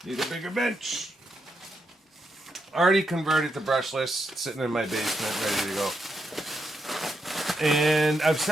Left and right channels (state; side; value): normal; both; correlation 0.82